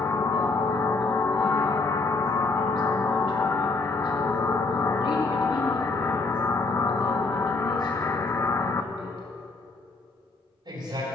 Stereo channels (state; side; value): quieter; right; 3.7 dB